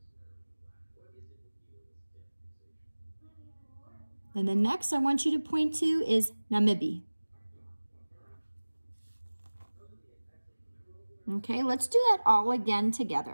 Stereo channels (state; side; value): inverted; both; correlation -1.00